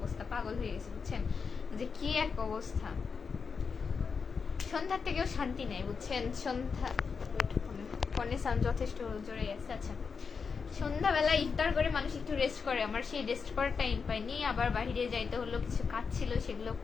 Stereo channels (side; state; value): right; quieter; 5.5 dB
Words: পাগল হয়ে গেছে বুঝছেন, যে কি এক অবস্থা। সন্ধ্যার থেকেও শান্তি নেই বুঝছেন। সন্ধ্যা ফোনের সাউন্ড যথেষ্ট জোরে আছে। আচ্ছা, সন্ধ্যাবেলা ইফতার করে মানুষ একটু রেস্ট করে, আমার সেই রেস্ট করার টাইম পাইনি। আবার বাইরে যাইতে হলো, কিছু কাজ ছিল, সেগুলো